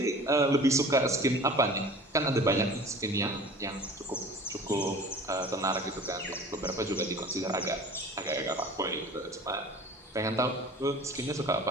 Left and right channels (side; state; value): both; normal; correlation 0.43